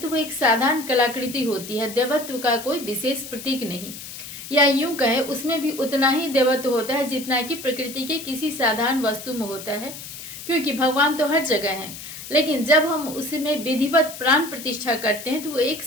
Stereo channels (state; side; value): noise; left; hiss, 12 dB below the sound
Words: वो एक साधारण कलाकृति होती है, देवत्व का कोई विशेष प्रतीक नहीं। या यूं कहे उसमें भी उतना ही देवत्व होता है जितना कि प्रकृति के किसी साधारण वस्तु में होता है, क्योंकि भगवान तो हर जगह हैं। लेकिन जब हम उसमें विधिवत प्राण प्रतिष्ठा करते हैं तो वो एक